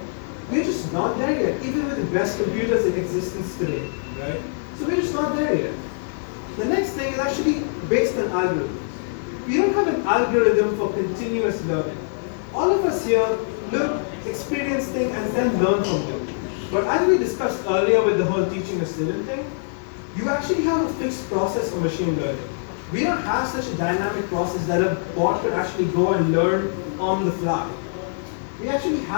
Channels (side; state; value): right; silent; digital silence